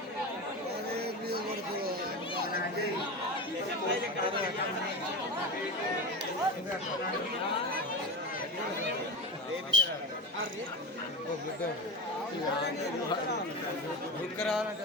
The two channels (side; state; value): both; normal; correlation 0.24